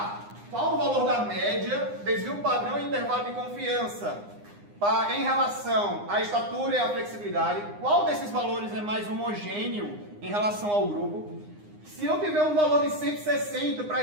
qual o valor da média, desvio padrão e intervalo de confiança em relação à estatura e à flexibilidade, qual desses valores é mais homogêneo em relação ao grupo. Se eu tiver um valor de 160 para a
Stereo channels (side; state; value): left; late; 9.8 ms